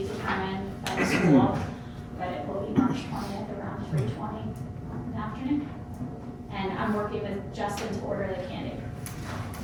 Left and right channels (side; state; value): both; identical; correlation 1.00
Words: determined by the school, but it will be March 20th around